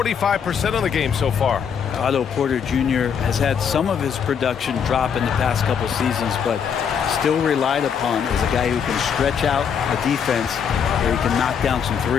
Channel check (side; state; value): right; quieter; 7.3 dB